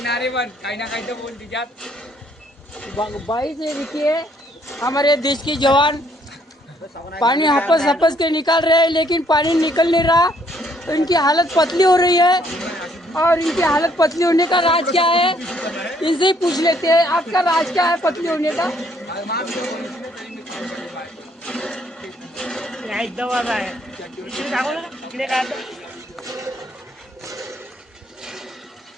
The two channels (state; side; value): normal; both; correlation 0.67